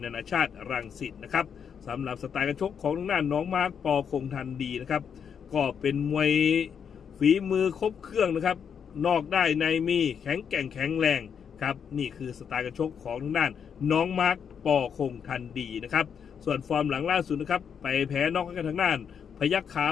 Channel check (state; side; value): quieter; right; 7.4 dB